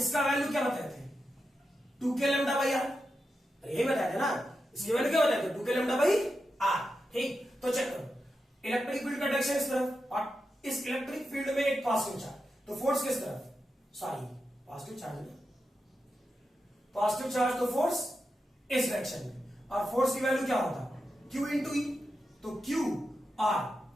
वैल्यू क्या बताए थे, 2k लैम्डा बाई r, यही बताया था ना, इसकी वैल्यू क्या बताए थे, 2k लैम्डा बाई r, ठीक। तो चेक करो, इलेक्ट्रिक फील्ड का डायरेक्शन इस तरफ, और इस इलेक्ट्रिक फील्ड में एक पॉजिटिव चार्ज, तो फोर्स किस तरफ, सॉरी पॉजिटिव चार्ज में, पॉजिटिव चार्ज तो फोर्स इस डायरेक्शन में, और फोर्स की वैल्यू क्या होता, Q इंटू ई, तो Q R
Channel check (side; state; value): both; normal; correlation 0.89